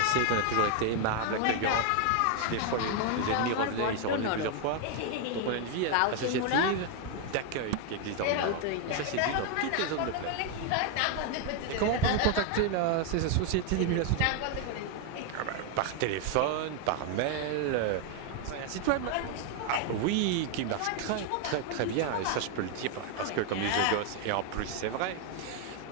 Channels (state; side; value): different; both; correlation 0.01